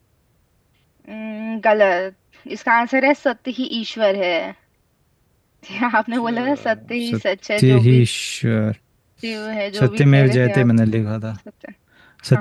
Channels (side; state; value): both; identical; correlation 1.00